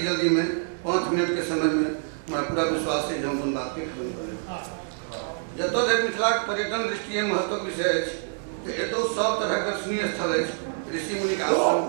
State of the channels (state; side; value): silent; left; digital silence